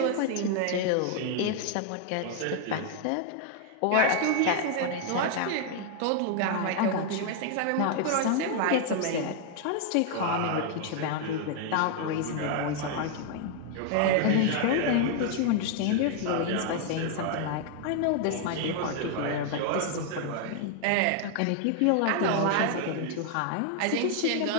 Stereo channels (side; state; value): both; different; correlation 0.00